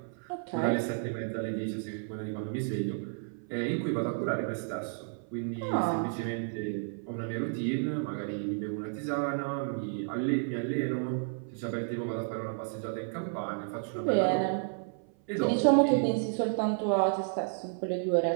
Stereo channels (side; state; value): left; silent; 57 dB below the other